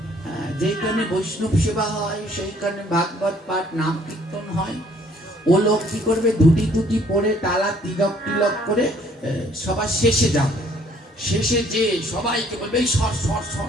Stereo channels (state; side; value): normal; both; correlation 0.61